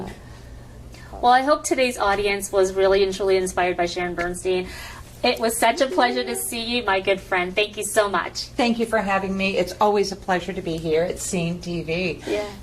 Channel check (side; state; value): both; identical; correlation 1.00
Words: Well, I hope today's audience was really and truly inspired by Sharon Burstein. It was such a pleasure to see you, my good friend. Thank you so much. Thank you for having me. It's always a pleasure to be here at Scene TV. Yeah.